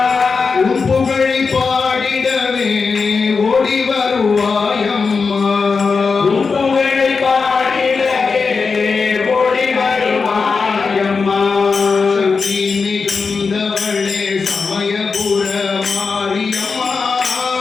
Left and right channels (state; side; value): quieter; right; 4.9 dB